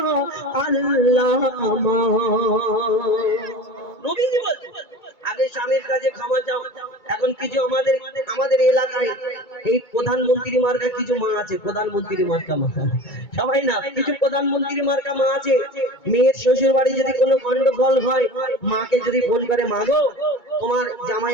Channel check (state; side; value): late; right; 2.2 ms